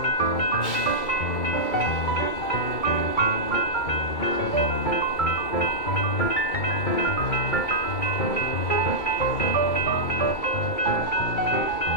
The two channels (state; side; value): late; right; 2.2 ms